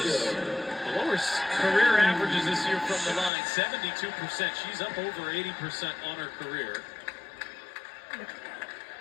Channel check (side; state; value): right; drops out; at 3.3 s